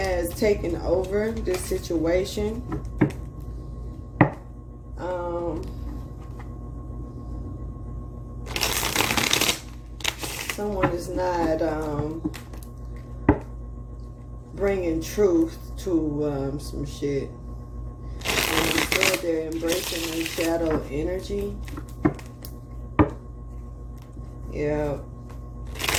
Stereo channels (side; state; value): both; identical; correlation 1.00